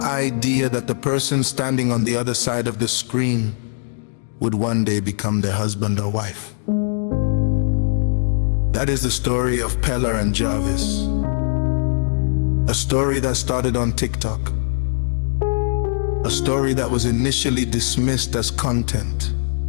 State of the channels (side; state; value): right; silent; digital silence